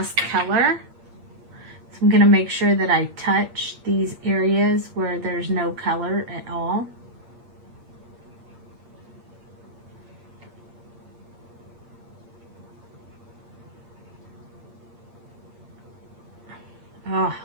color. So I'm going to make sure that I touch these areas where there's no color at all. Oh,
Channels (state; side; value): late; left; 8.6 ms